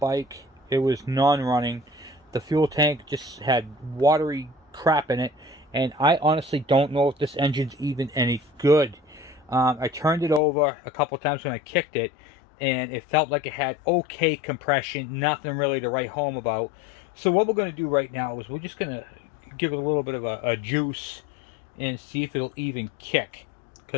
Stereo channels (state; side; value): drops out; right; at 10.4 s